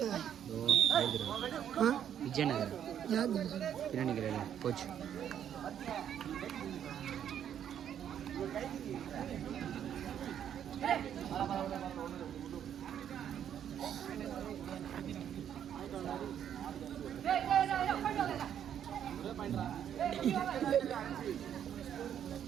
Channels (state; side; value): quieter; left; 9.5 dB